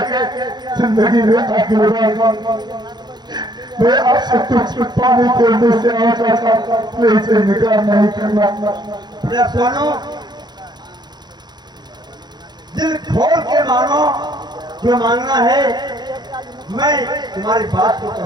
जिंदगी में आगे मैं आपसे कुछ पाने के उम्मीद से आया चाचा, मैं इसे इनकार नहीं करना। सुनो दिल खोल के मानो जो मांगना है, मैं तुम्हारी बात को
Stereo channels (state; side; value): late; left; 0.21 ms